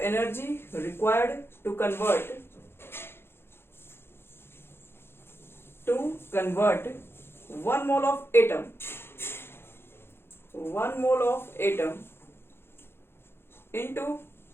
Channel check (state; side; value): late; right; 0.11 ms